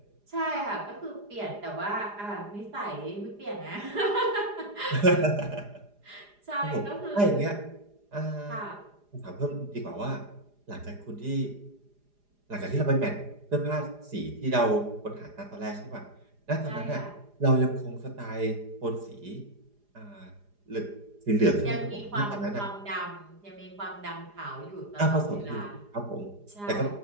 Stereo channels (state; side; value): late; left; 4.9 ms